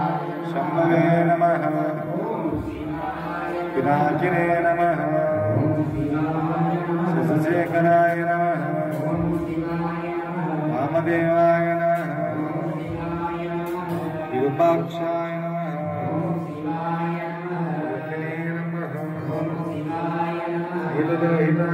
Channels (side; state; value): both; identical; correlation 1.00